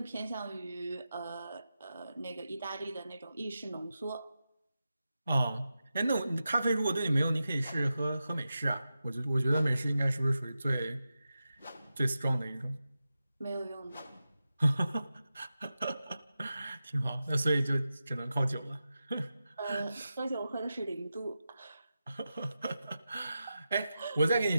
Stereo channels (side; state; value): both; inverted; correlation -0.91